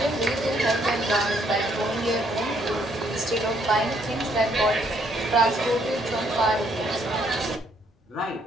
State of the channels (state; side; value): normal; both; correlation 0.69